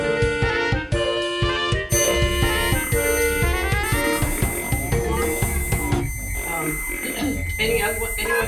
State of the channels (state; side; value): identical; both; correlation 1.00